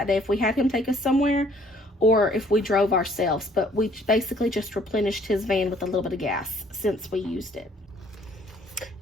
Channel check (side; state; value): both; normal; correlation 0.60